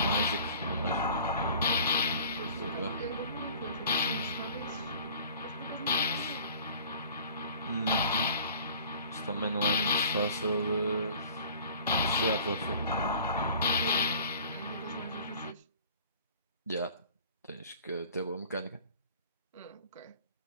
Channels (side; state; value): both; inverted; correlation -0.47